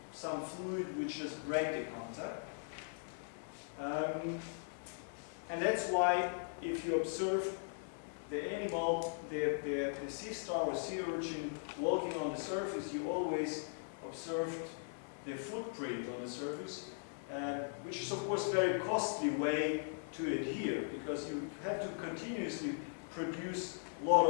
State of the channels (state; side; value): silent; right; 52 dB below the other